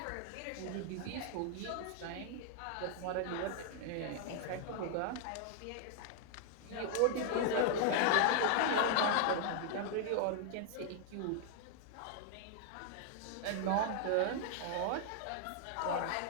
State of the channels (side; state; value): both; different; correlation 0.00